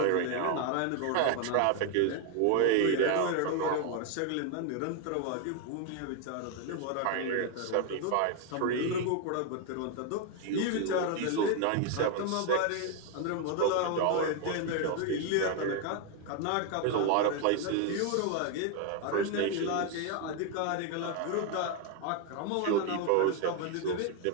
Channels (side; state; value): both; different; correlation 0.01